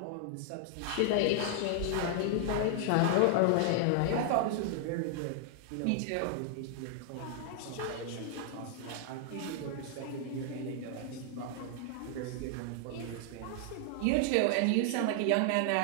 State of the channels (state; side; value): different; both; correlation 0.00